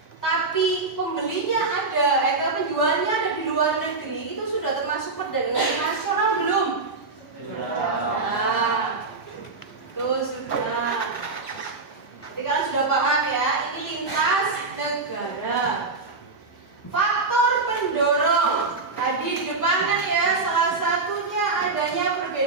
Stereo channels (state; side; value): quieter; left; 3.9 dB